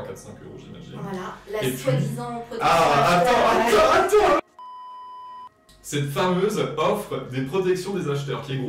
4-5 €, j'imagine. Voilà, la soi-disant protection. Ah, attends! Cette fameuse offre des protections des acheteurs, qui est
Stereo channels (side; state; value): both; identical; correlation 1.00